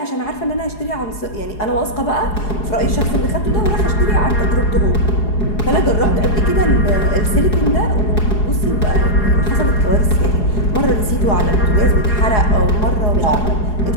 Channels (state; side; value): late; right; 4.8 ms